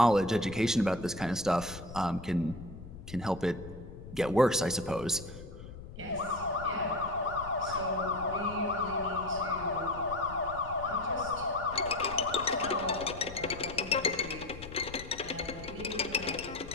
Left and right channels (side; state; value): left; noise; rumble, 14 dB below the sound